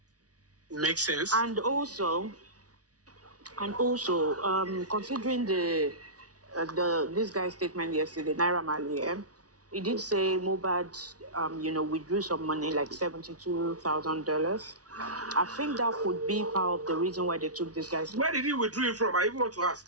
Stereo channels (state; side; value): late; left; 0.68 ms